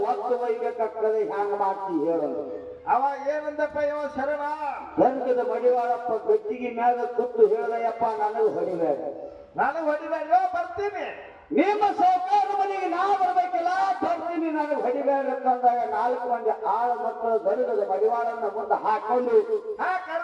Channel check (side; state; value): both; identical; correlation 1.00